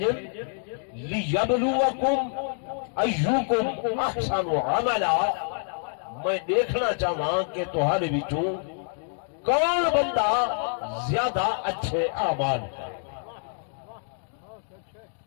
لیبلوکم ایوکم احسن عملا، میں دیکھنا چاہاں کہ تمہارے وچوں کون بندہ زیادہ اچھے اعمال کرے۔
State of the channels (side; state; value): right; silent; digital silence